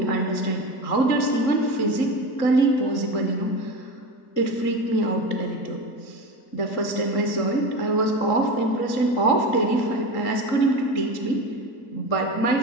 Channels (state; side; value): late; right; 3.8 ms